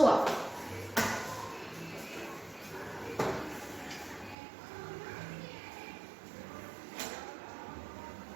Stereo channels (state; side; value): drops out; left; at 4.4 s